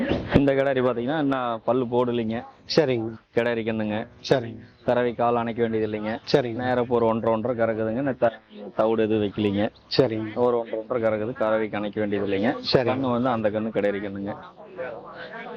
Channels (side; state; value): both; identical; correlation 1.00